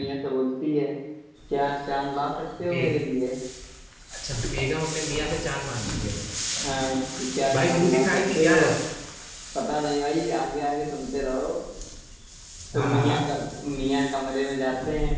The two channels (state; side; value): identical; both; correlation 1.00